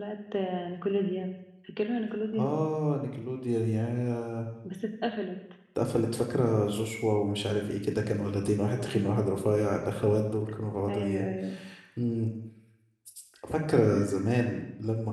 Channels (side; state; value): both; identical; correlation 1.00